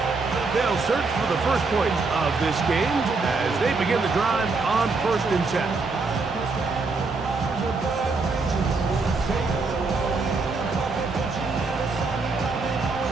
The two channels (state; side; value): quieter; left; 4.0 dB